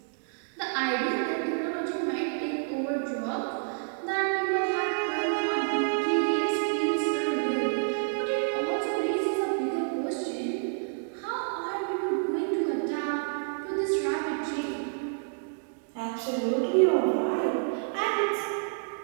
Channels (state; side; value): silent; left; digital silence